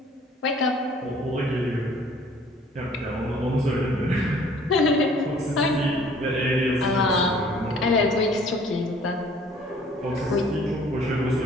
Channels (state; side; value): normal; both; correlation 0.55